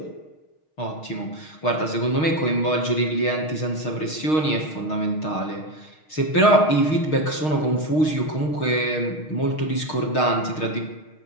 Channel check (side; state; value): right; late; 6.4 ms